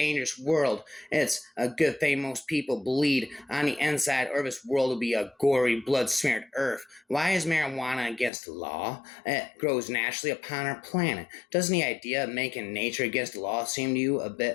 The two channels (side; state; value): right; drops out; at 8.3 s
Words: world. It's a good thing most people bleed on the inside, or this world will be a gory, blood-smeared earth. Why is marijuana against the law? It grows naturally upon our planet. Doesn't the idea of making nature against the law seem to you a